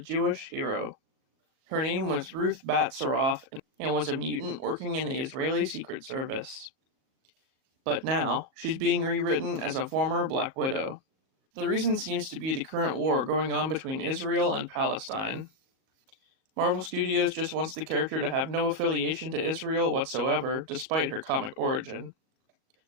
hero. Her name was Ruth Bat Saroff and was a mutant working in the Israeli Secret Service. But now, she's being rewritten as a former Black Widow. The reason seems to be the current war going on between Israel and Palestine. Marvel Studios just wants the character to have no affiliation to Israel whatsoever, despite her comic origin.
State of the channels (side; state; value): left; late; 38 ms